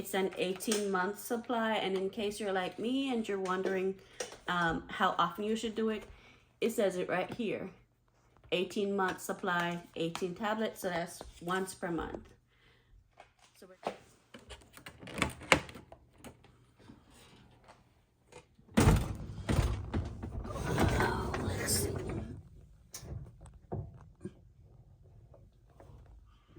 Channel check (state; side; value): identical; both; correlation 1.00